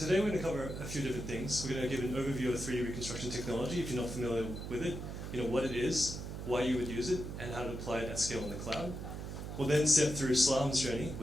we're going to cover a few different things. We're going to give an overview of 3D reconstruction technology, if you're not familiar with it, what it is, why you would use it, and how to apply it at scale in the cloud. We'll then step through Slalom's journey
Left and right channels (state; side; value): noise; right; hum, 7 dB below the sound